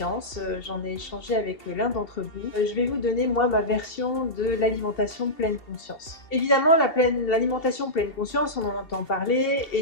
J'en ai échangé avec l'un d'entre vous. Je vais vous donner moi ma version de l'alimentation pleine conscience. Évidemment, l'alimentation pleine conscience, on en entend parler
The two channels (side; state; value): right; late; 2.7 ms